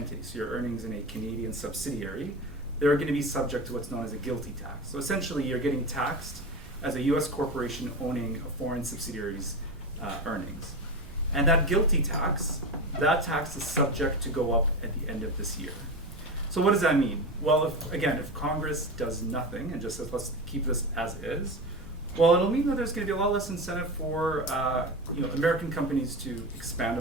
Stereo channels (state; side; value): normal; both; correlation 0.23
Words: so your earnings in a Canadian subsidiary, they're going to be subject to what's known as a GILTI tax. So essentially you're getting taxed as a US corporation owning a foreign subsidiary's earnings. And that GILTI tax, that tax is subject to go up at the end of this year. So what does that mean? Well, if Congress does nothing and just says, let's keep this as is, well, it'll mean that there's going to be a lot less incentive for American companies to expand